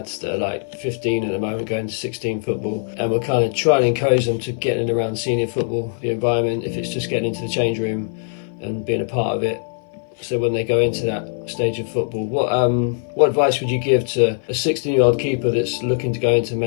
that are like 15 at the moment, going to 16 football, and we're kind of trying to encourage them to get in and around senior football, the environment, if it's just getting into the change room and being a part of it. So when they go into that stage of football, what advice would you give to a 16-year-old keeper that's looking to go into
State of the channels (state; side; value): silent; right; 57 dB below the other